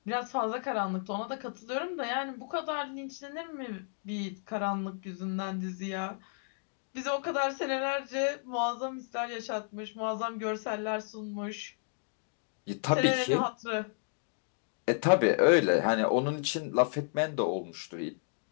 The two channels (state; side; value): silent; right; digital silence